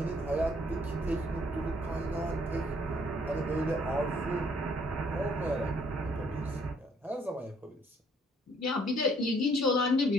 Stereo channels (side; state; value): both; normal; correlation 0.64